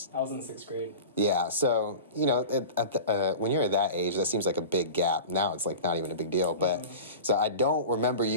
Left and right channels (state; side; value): inverted; both; correlation -0.35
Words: I was in 6th grade. Yeah, so, when you're at that age, that seems like a big gap. Now it's like not even a big deal. But so I don't remember